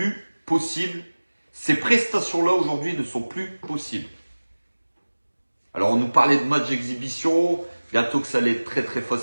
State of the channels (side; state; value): both; inverted; correlation -1.00